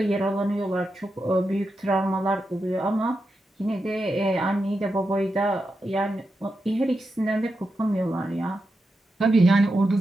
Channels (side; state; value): both; normal; correlation 0.87